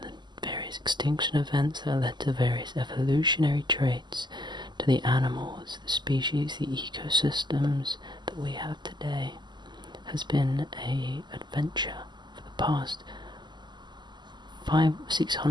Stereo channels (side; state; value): left; late; 0.21 ms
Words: the various extinction events that led to various evolutionary traits, to the animals, the species, the ecosystems that we have today, has been an adventure for the past